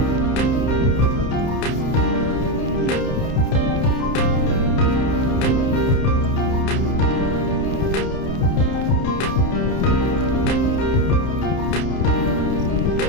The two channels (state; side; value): late; right; 30 ms